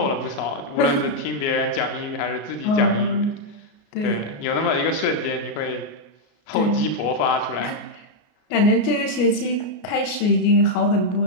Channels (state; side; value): late; right; 33 ms